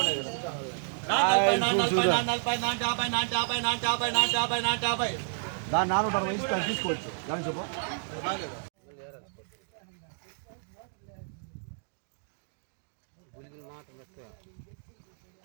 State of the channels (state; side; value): silent; left; digital silence